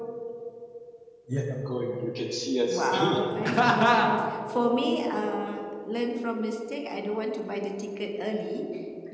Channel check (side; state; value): both; identical; correlation 1.00